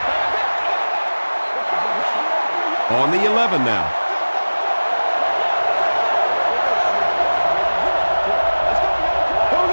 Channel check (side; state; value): both; inverted; correlation -1.00